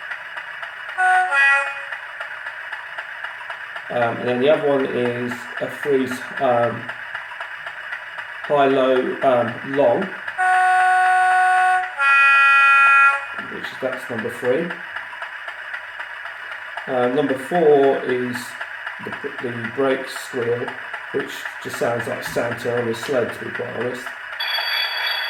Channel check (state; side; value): identical; both; correlation 1.00